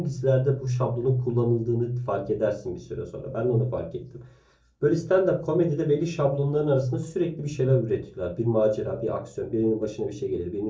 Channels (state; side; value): identical; both; correlation 1.00